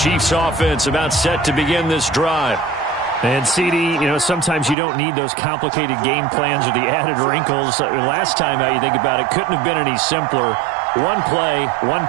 offense about set to begin this drive. And CD, sometimes you don't need those complicated game plans or the added wrinkles. Last time out, you think about it, couldn't have been any simpler. 1 play, 1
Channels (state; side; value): drops out; left; at 4.8 s